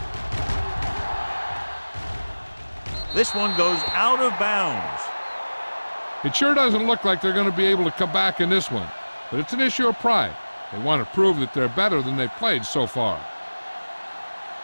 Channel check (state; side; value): inverted; both; correlation -1.00